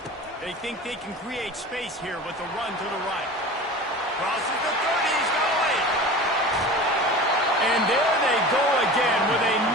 They think they can create space here with a run to the right. Crosses the 30, he's going. And there they go again with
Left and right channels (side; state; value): both; normal; correlation 0.35